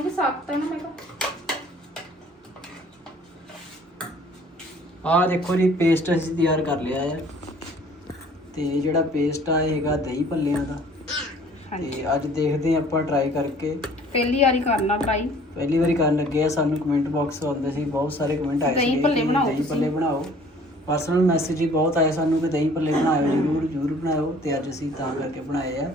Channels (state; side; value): normal; both; correlation 0.53